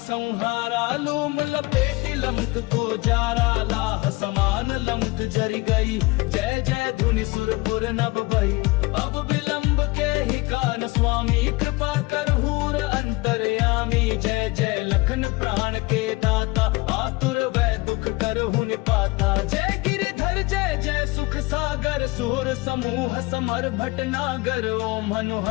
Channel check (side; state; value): right; quieter; 23.3 dB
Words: लूम लपेटी लंक को जारा। लाह समान लंक जरी गई, जय जय धुनि सुरपुर नभ भई। अब विलंब के ही कान स्वामी, कृपा कर हूर अंतर्यामी। जय जय लखन प्राण के दाता, आतुर वै दुख करहु निपाता। जय गिरिधर जय जय सुख सागर, सूर समूह समर भटनागर। ओम हनु